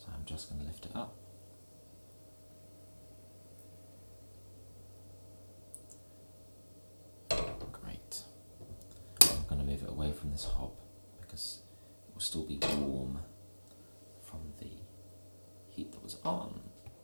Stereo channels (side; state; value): both; inverted; correlation -1.00